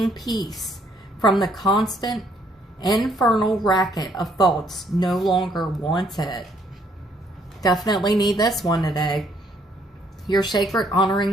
peace from the constant infernal racket of thoughts no longer wanted. Definitely need this one today. Your sacred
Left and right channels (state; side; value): normal; both; correlation 0.67